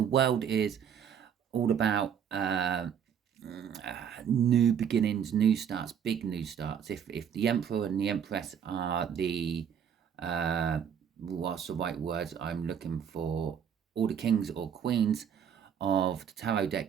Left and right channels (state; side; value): quieter; left; 8.2 dB